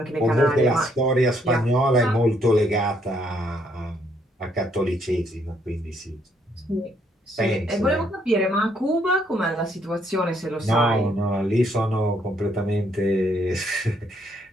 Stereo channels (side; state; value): both; normal; correlation 0.70